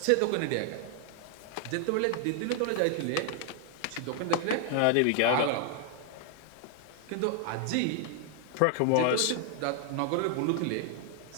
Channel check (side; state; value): both; different; correlation 0.00